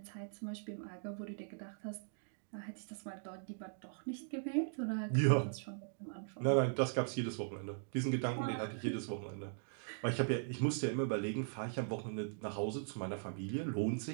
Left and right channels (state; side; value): silent; left; digital silence